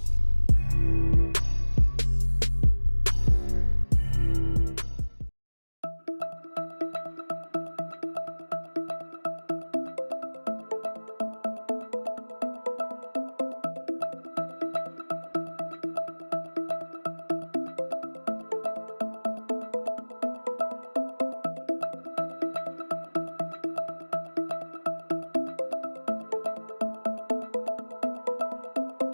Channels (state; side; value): inverted; both; correlation -1.00